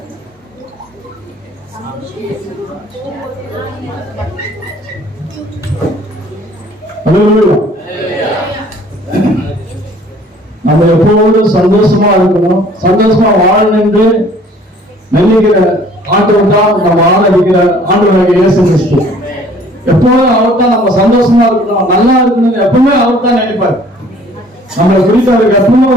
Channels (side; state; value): both; normal; correlation 0.55